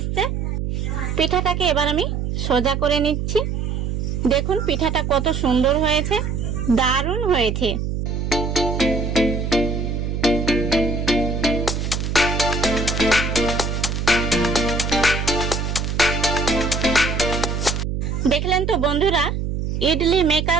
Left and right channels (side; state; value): right; noise; hum, 2 dB below the sound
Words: পিঠাটাকে এবার আমি সোজা করে নিচ্ছি। দেখুন পিঠাটা কত সুন্দর হয়েছে, দারুণ হয়েছে। দেখলেন তো বন্ধুরা, ইডলি